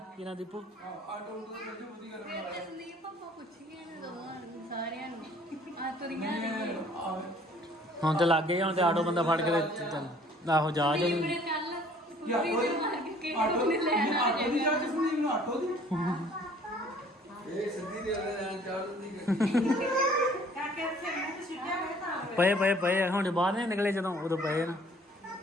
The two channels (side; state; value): both; normal; correlation 0.56